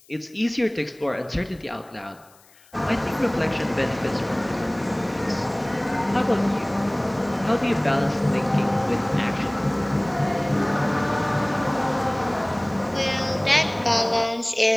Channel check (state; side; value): noise; left; hiss, 28 dB below the sound